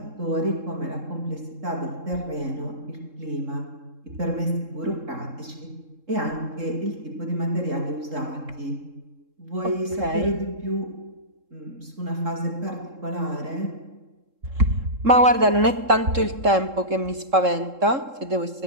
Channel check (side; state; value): left; late; 3.7 ms